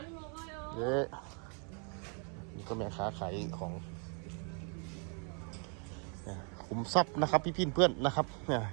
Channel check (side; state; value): left; quieter; 39.6 dB